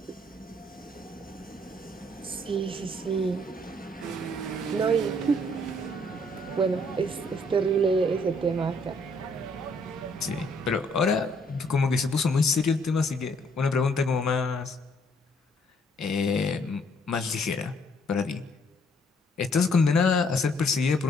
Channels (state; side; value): normal; both; correlation 0.66